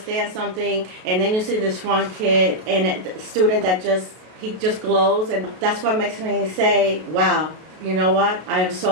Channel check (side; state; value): left; late; 33 ms